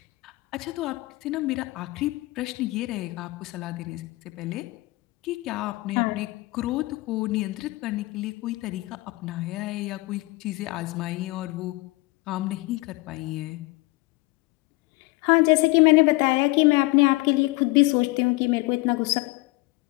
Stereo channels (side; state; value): right; quieter; 22.3 dB